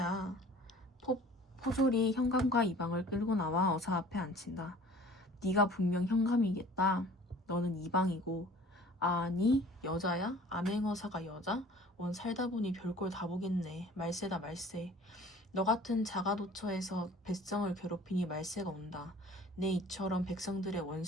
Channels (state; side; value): normal; both; correlation 0.48